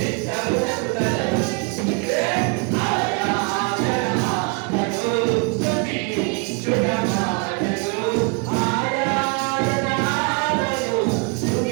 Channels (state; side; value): quieter; left; 34.2 dB